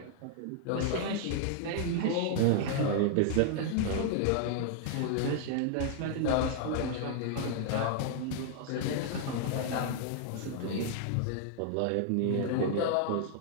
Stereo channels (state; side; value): different; both; correlation 0.00